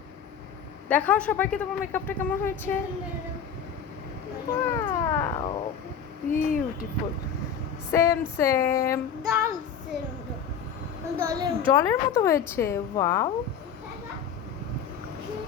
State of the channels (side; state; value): right; quieter; 7.3 dB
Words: দেখাও সবাইকে তোমার মেকআপটা কেমন হয়েছে। ওয়াও, বিউটিফুল, সেম সেম, ডলের জলের মতো হয়েছে। ওয়াও,